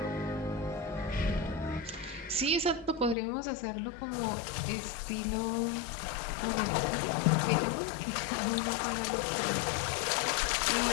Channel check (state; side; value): drops out; right; at 3.2 s